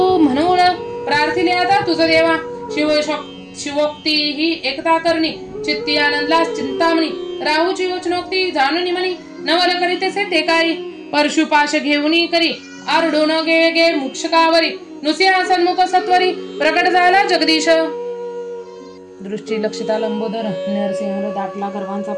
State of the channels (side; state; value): both; identical; correlation 1.00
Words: म्हणून प्रार्थिले आता तुझ देवा शिवोक्ती ही एकता करणी चित्ती आनंदला चिंतामणी राहूची वचनोक्ती जाणून म्हणी नवल करीतेसे ते काळी परशुपाश घेऊनी करी आरडून गे मुक्षकावरी नुसिंहा सन्मुख सत्वरी प्रकट झाला जगदीश दृष्टी लक्षिता लंबोदर नरसिंह दाटला गर्वांचा